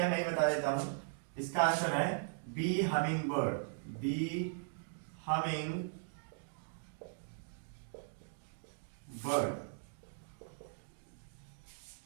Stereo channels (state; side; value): silent; left; digital silence